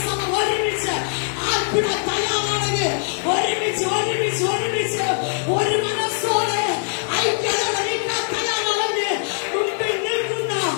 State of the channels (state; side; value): silent; right; digital silence